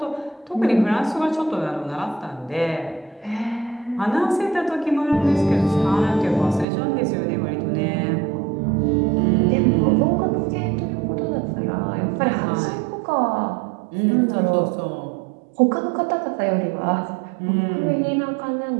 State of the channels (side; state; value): left; drops out; at 6.7 s